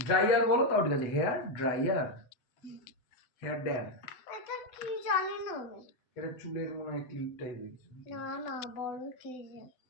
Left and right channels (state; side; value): late; right; 8.0 ms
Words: dryer বলো তাও ঠিক আছে হেয়ার ড্রায়ার হেয়ার ড্যান এটা কি জানি না আমি। এটা চুলের মনে হয় ক্লিপ টাইপের না না বড় কি